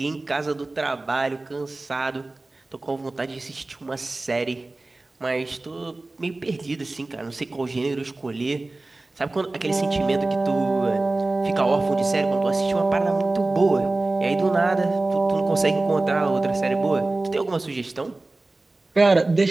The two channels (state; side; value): quieter; left; 3.1 dB